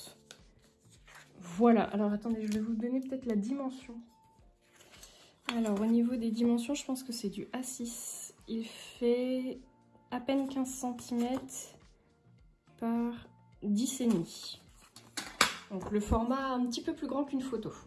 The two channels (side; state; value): both; identical; correlation 1.00